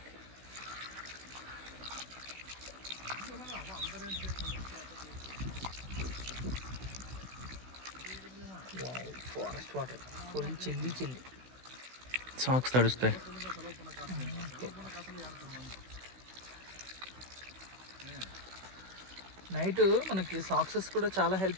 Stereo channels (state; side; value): late; left; 16 ms